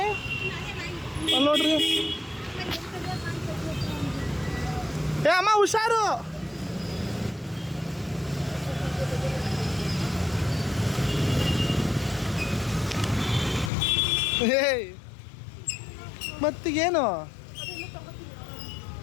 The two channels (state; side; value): drops out; right; at 13.7 s